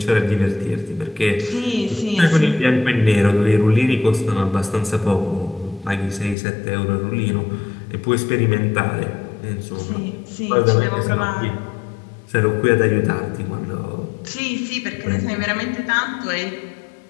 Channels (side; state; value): right; drops out; at 6.4 s